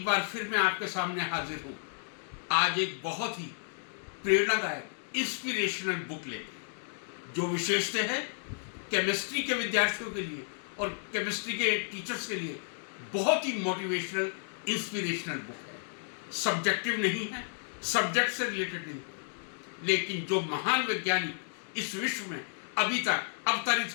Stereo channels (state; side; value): silent; right; digital silence